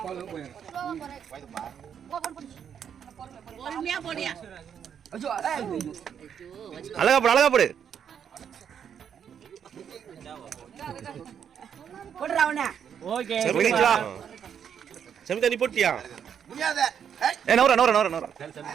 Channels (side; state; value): left; quieter; 8.2 dB